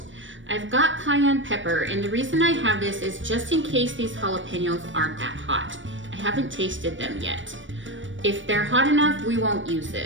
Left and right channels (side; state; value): left; late; 0.56 ms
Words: I've got cayenne pepper, and the reason I have this is just in case these jalapenos aren't that hot. I haven't tasted them yet. If they're hot enough, we won't use